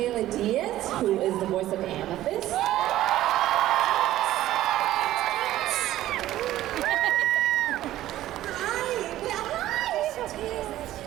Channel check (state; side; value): quieter; left; 14.1 dB